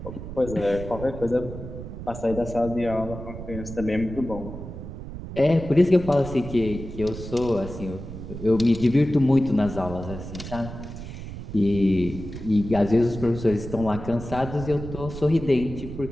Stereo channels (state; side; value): noise; right; rumble, 10 dB below the sound